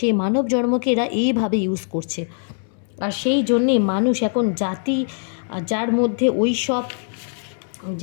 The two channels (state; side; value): silent; right; 64 dB below the other